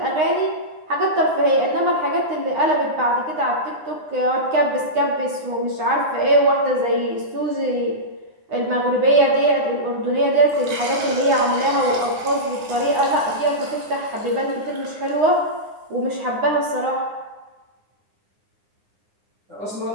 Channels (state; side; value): late; left; 9.8 ms